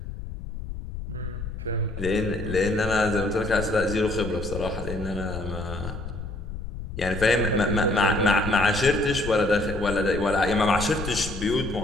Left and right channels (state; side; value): noise; left; rumble, 8 dB below the sound